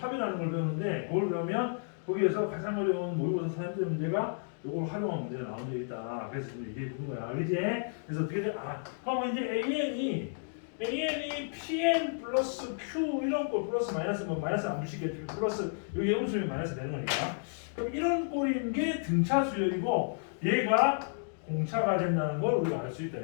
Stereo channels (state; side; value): silent; right; digital silence